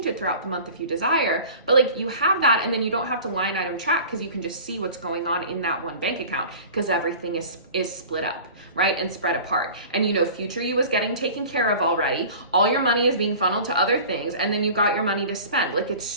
it throughout the month if you desire, but like you have that, and then you don't have to line item track because you can just see what's going on in that one bank account because everything is split up, right, and spread apart. And you know future you is getting taken care of already. All your money is being funneled to other things, and then you got your money to spend. Like, it's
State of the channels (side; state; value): both; inverted; correlation -0.41